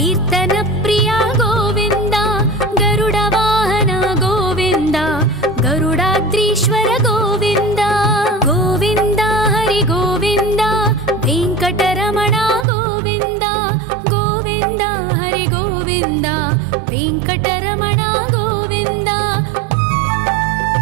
प्रिय गोविन्द गरुड वाहन गोविन्द गरुडाद्रीश्वर गोविन्द गोविन्द हरि गोविन्द वेङ्कटरमण गोविन्द गोविन्द हरि गोविन्द वेङ्कटरमण गोविन्द।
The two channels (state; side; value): drops out; left; at 12.7 s